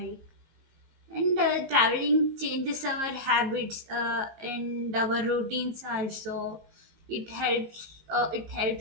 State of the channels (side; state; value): left; late; 19 ms